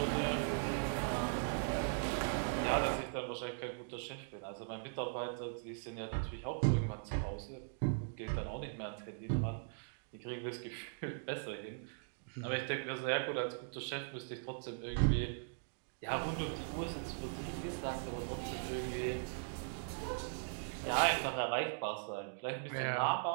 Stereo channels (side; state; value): left; silent; digital silence